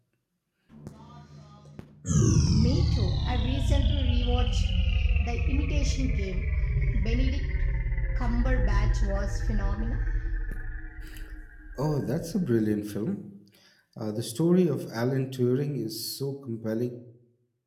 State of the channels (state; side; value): identical; both; correlation 1.00